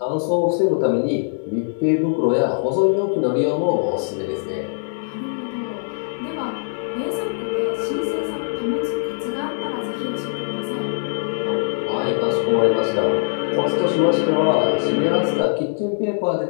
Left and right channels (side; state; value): right; silent; digital silence